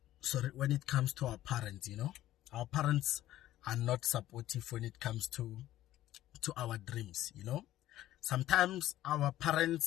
when it comes to our parents, Our parents are not supportive when it comes to our dreams, Sometimes our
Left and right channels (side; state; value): right; quieter; 14.1 dB